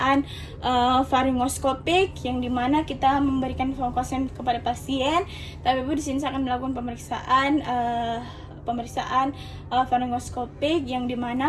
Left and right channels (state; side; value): identical; both; correlation 1.00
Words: faringoskopik, yang dimana kita memberikan fokusan kepada pasien. Tapi ibu di sini saya akan melakukan pemeriksaan faringoskopik, yang